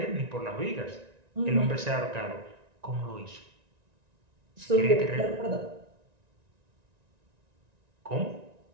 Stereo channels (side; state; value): left; late; 1.9 ms